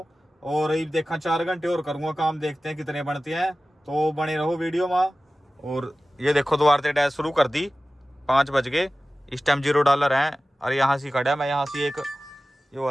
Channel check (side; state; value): both; normal; correlation 0.96